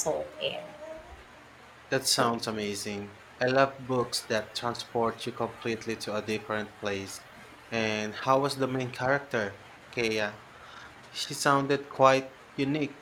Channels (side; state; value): both; identical; correlation 1.00